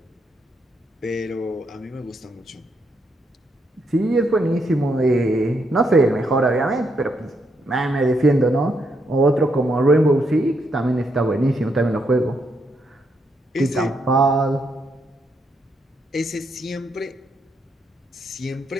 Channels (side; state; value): both; normal; correlation 0.78